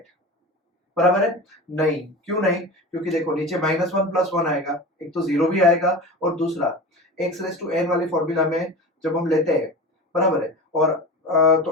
बराबर है, नहीं क्यों नहीं, क्योंकि देखो नीचे माइनस 1 प्लस 1 आएगा, एक तो जीरो भी आएगा और दूसरा x रेज टू n वाली फॉर्मूला में जब हम लेते हैं बराबर है। और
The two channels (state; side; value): normal; both; correlation 0.31